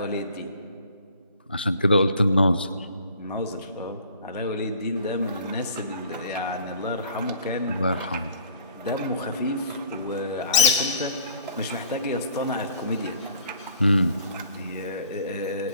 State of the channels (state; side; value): inverted; both; correlation -0.52